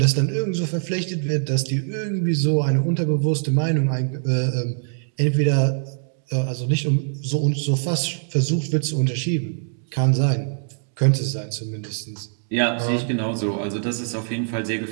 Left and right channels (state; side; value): silent; left; digital silence